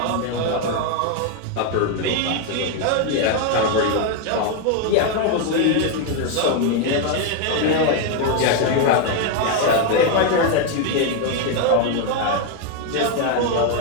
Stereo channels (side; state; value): both; different; correlation 0.01